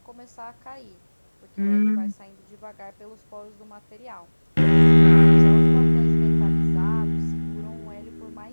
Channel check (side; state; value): both; inverted; correlation -1.00